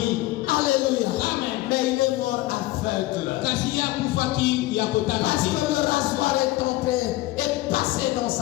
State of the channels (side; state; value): right; quieter; 18.0 dB